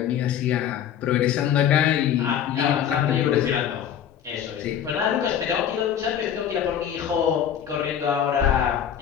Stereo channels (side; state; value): right; quieter; 9.4 dB